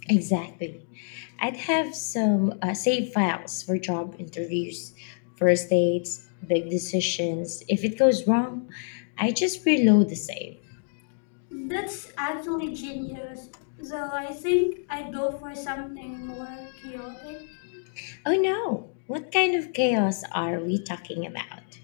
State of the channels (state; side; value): silent; right; digital silence